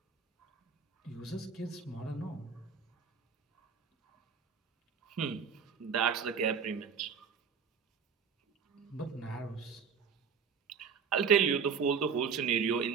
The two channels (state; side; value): quieter; left; 6.3 dB